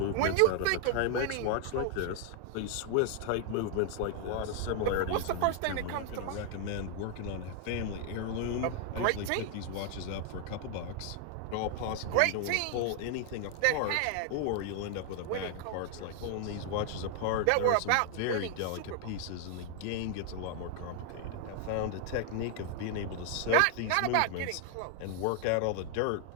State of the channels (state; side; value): different; both; correlation 0.00